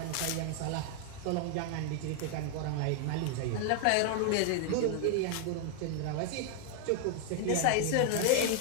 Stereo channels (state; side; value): different; both; correlation 0.00